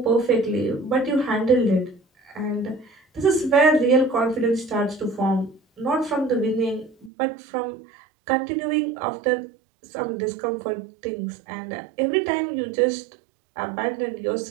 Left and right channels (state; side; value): drops out; left; at 7.1 s